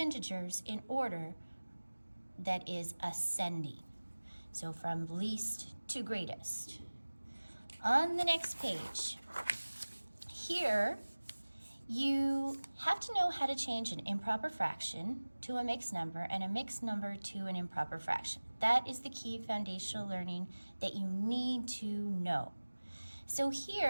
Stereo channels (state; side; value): inverted; both; correlation -1.00